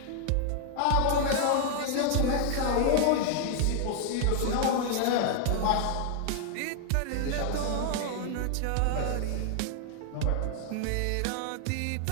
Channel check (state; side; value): different; both; correlation 0.00